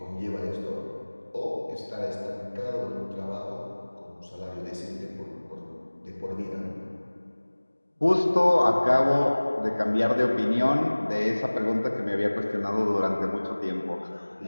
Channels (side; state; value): both; inverted; correlation -1.00